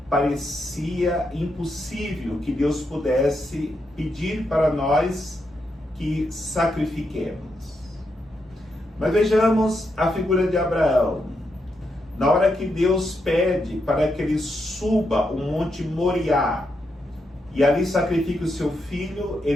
parecia impossível que Deus pudesse pedir para nós que sacrifiquemos. Mas vejamos a figura de Abraão. Na hora que Deus pede para que ele suba o Monte Moriá e ali sacrifique o seu filho,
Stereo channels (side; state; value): both; normal; correlation 0.82